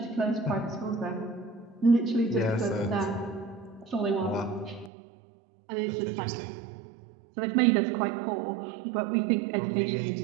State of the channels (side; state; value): left; drops out; at 4.9 s